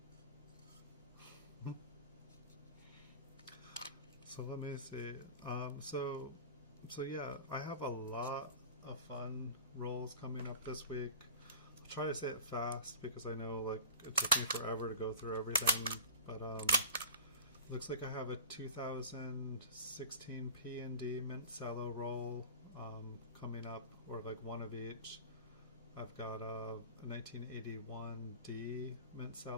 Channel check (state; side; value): inverted; both; correlation -0.36